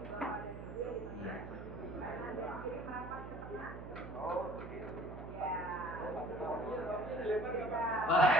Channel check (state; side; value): noise; right; hum, 10 dB below the sound